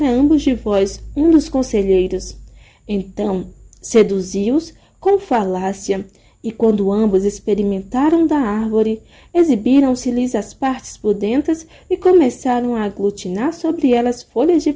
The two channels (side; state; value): both; identical; correlation 1.00